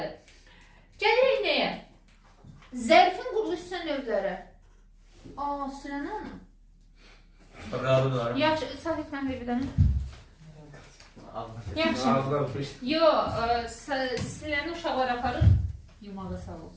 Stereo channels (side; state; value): both; identical; correlation 1.00